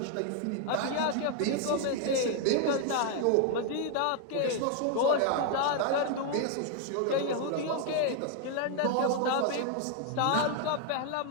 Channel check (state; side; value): different; both; correlation 0.00